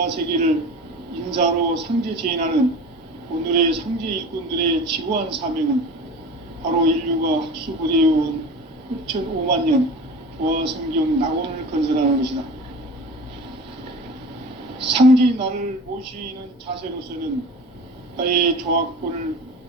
인사로 상제 제인하는 오늘의 상제 일꾼들의 지구한 사명은 바로 인류가 학수고대해온 6,500만 년 조화성경 낙원을 건설하는 것이다. 상제인 나를 모시는 자세로서는 나의 조화권을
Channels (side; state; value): both; normal; correlation 0.36